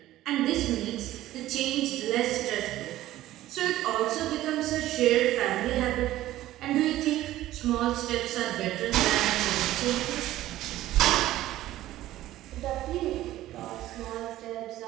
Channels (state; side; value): quieter; left; 14.8 dB